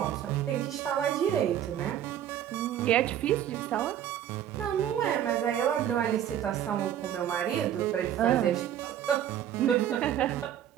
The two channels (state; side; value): quieter; left; 10.7 dB